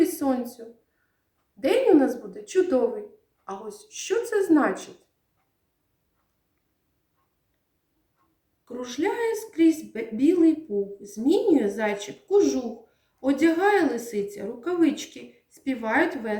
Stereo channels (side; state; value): both; identical; correlation 1.00